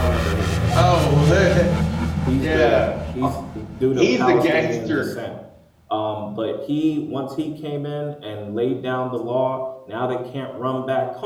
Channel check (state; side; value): identical; both; correlation 1.00